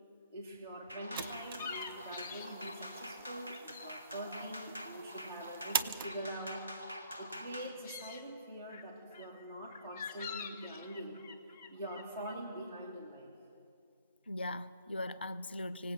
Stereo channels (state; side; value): inverted; both; correlation -0.59